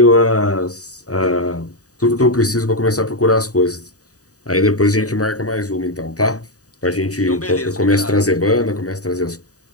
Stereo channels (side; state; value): right; late; 0.66 ms